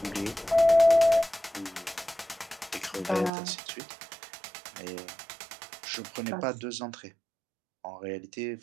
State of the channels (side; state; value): left; drops out; at 3.3 s